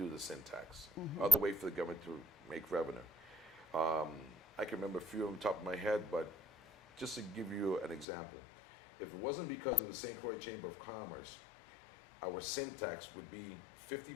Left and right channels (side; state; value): right; drops out; at 8.1 s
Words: the sin tax, other way for the government to make revenue. I can remember a few on the top of my head, but just to give you an example, if it wasn't because of the St. Croix Chamber of Commerce, our sin tax would be